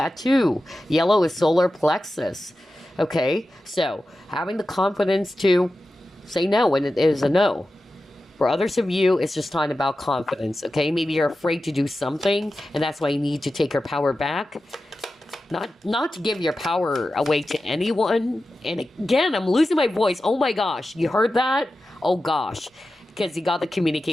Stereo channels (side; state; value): both; normal; correlation 0.93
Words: too. Yellow is solar plexus. Okay? So, having the confidence to say no when it is a no. For others of you, it's just talking about confidence, okay? Maybe you're afraid to do something, and that's why you need to take your power back. Not to give your power away to anyone. And again, I'm losing my voice. Oh my gosh, you heard that? Oh gosh, because you got the